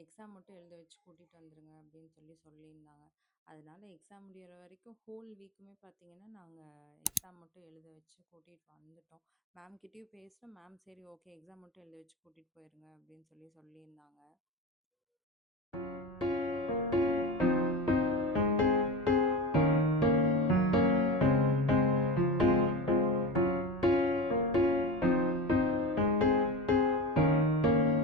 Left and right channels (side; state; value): both; normal; correlation 0.27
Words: எக்ஸாம் மட்டும் எழுத வச்சு கூட்டிட்டு வந்துருங்க அப்படின்னு சொல்லியிருந்தாங்க. அதனால எக்ஸாம் முடியிற வரைக்கும் ஹோல் வீக்குமே பார்த்தீங்கன்னா, நாங்க எக்ஸாம் மட்டும் எழுத வச்சு கூட்டிட்டு வந்துட்டோம். மேம் கிட்டயும் பேசினோம். மேம் சரி ஓகே எக்ஸாம் மட்டும் எழுத வச்சு கூட்டிட்டு போயிருங்க அப்படின்னு சொல்லியிருந்தாங்க.